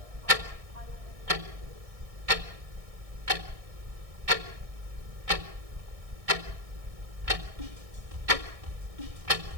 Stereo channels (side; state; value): left; late; 1.6 ms